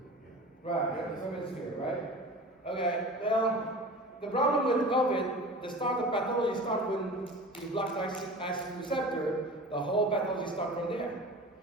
yeah. Right, Remdesivir, right? Okay, well, the problem with COVID, the start of pathology starts when you block the acid receptor, the whole pathology starts from there.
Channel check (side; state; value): both; normal; correlation 0.36